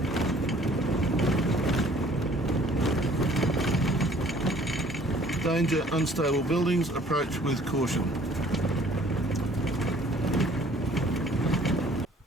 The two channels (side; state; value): both; normal; correlation 0.56